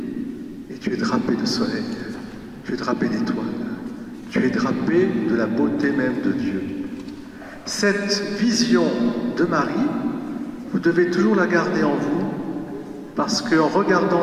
et tu es drapé de soleil, tu es drapé d'étoiles, tu es drapé de la beauté même de Dieu. Cette vision de Marie, vous devez toujours la garder en vous, parce qu'en regardant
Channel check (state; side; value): identical; both; correlation 1.00